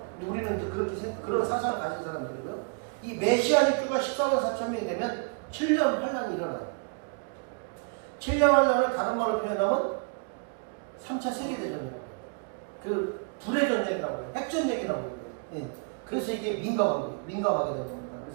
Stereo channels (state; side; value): quieter; left; 36.9 dB